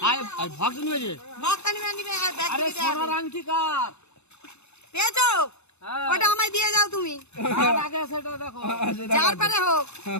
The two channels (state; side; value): late; right; 0.81 ms